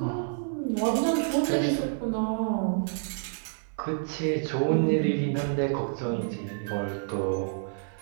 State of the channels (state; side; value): silent; left; 59 dB below the other